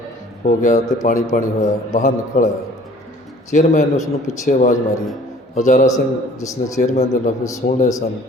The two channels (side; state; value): both; normal; correlation 0.52